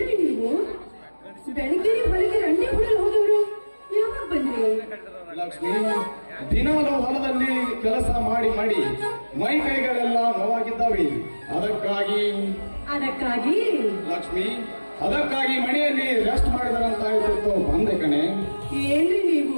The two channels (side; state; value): both; inverted; correlation -1.00